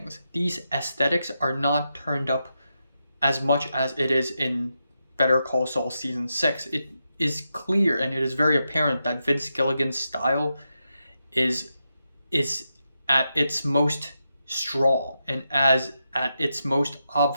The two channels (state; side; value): inverted; both; correlation -0.86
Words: these aesthetics are not turned up as much as it is in Better Call Saul Season 6. It is clear and it is very apparent that Vince Gilligan's style is at its most strong and as at its most